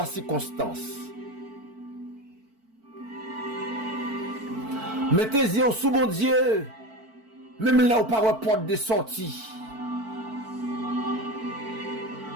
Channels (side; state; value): left; late; 4.5 ms